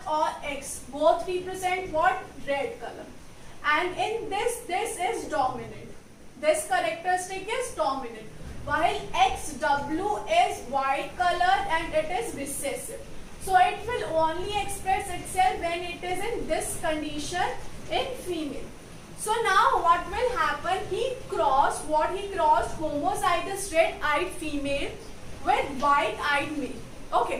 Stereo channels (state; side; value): identical; both; correlation 1.00